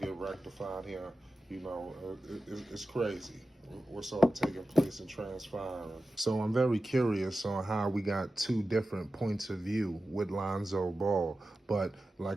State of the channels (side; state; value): both; normal; correlation 0.94